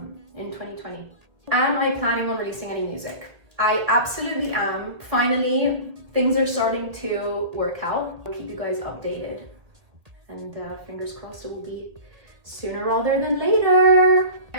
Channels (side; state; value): left; late; 2.0 ms